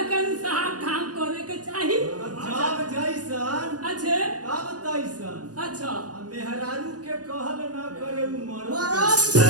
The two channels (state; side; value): late; left; 0.68 ms